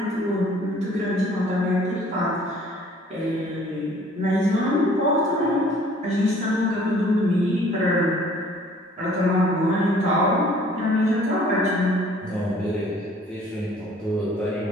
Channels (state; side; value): normal; both; correlation 0.55